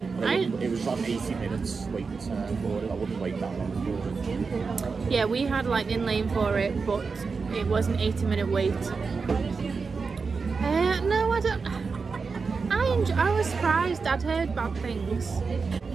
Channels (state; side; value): quieter; left; 4.8 dB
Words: Like, it was on 80 minutes waiting time for it. I wouldn't wait that long for it. Yeah, we had Lightning Lane for it, but it was an 80-minute wait. No, I don't. I was surprised. I'd heard bad things,